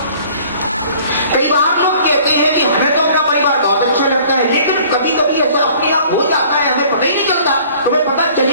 कई बार लोग कहते हैं कि हमें तो अपना परिवार बहुत अच्छा लगता है, लेकिन कभी कभी ऐसा अपने आप हो जाता है, हमें पता ही नहीं चलता। तुम्हें पता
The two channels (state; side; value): inverted; both; correlation -0.53